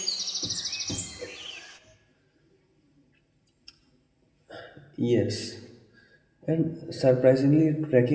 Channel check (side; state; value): both; identical; correlation 1.00